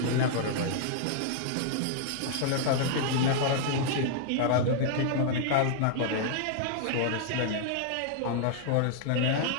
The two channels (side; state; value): both; different; correlation -0.01